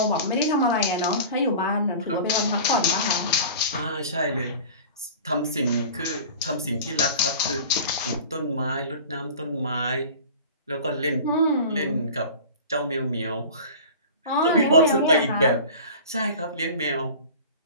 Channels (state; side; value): inverted; both; correlation -0.38